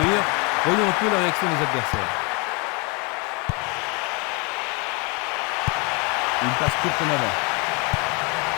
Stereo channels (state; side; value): quieter; right; 31.4 dB